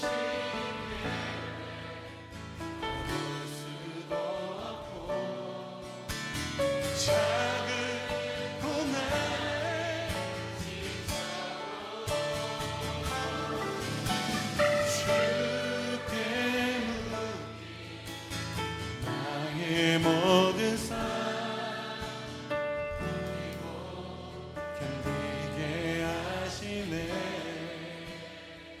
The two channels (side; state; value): both; identical; correlation 1.00